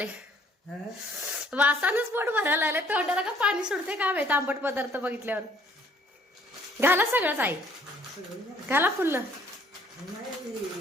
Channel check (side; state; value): both; normal; correlation 0.60